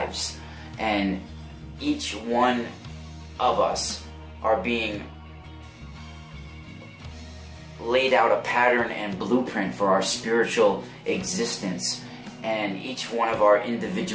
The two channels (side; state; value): both; identical; correlation 1.00